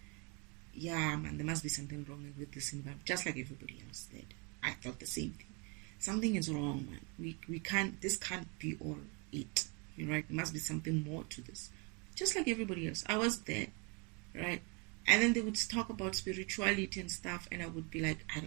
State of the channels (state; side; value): quieter; left; 31.6 dB